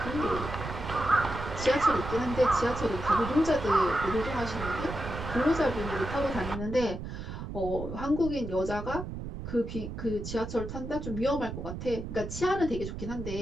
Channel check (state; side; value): noise; right; rumble, 8 dB below the sound